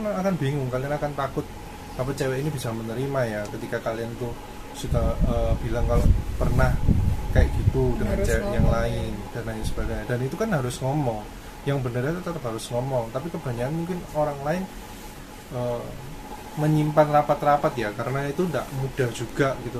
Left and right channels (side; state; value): both; identical; correlation 1.00